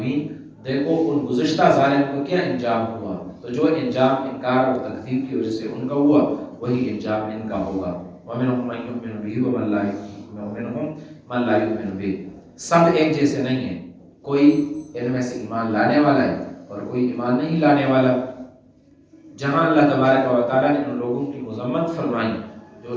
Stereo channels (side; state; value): both; identical; correlation 1.00